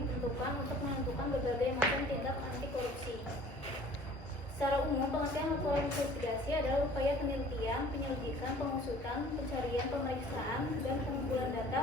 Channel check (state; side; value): normal; both; correlation 0.50